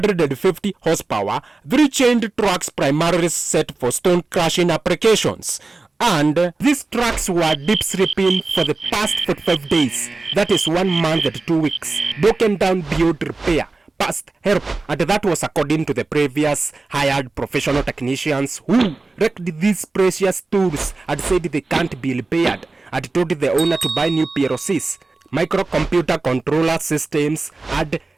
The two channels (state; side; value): quieter; left; 3.5 dB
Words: horsepower, 3 chained trucks primarily set for stone crushing applications. And these trucks were deep sleeping for the past 45 days, that is 1 month and 2 weeks, broken down beyond repair, past help, and that was according to the previous hired professional technicians who wrecked these precious tools and said they can't be repaired, and told the owner to buy new PLCs, microcomputer controller systems, and